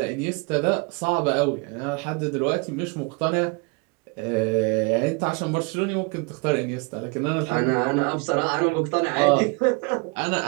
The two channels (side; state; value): left; quieter; 30.4 dB